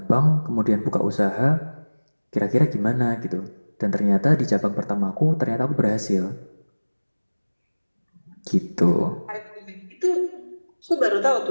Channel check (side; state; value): both; inverted; correlation -1.00